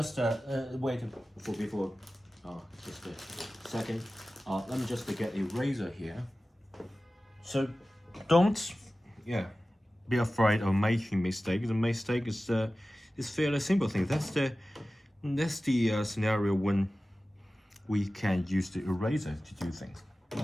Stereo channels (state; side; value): normal; both; correlation 0.96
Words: wait before just a second. Let me just get a razor here. So don't be afraid of making mistake. The mistake is fairly simple thing. That's the scenario when we can use the eraser to do things.